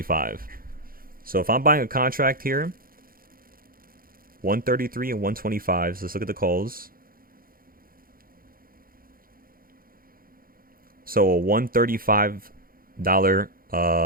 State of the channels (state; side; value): late; left; 0.42 ms